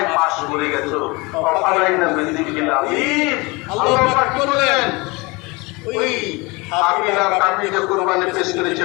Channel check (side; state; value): right; quieter; 25.7 dB